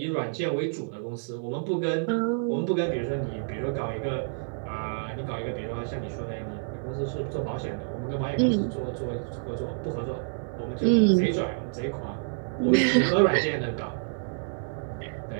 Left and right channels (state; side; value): silent; left; digital silence